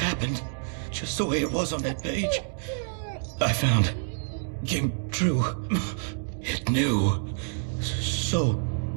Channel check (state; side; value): silent; left; digital silence